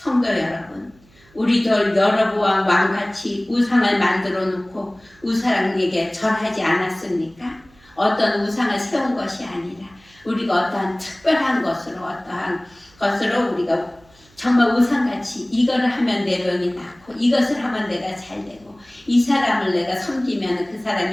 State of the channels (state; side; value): noise; right; hum, 30 dB below the sound